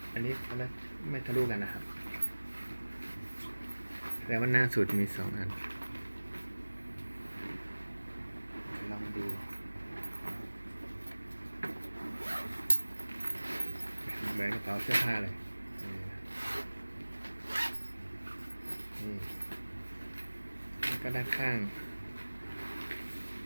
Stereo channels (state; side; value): inverted; both; correlation -1.00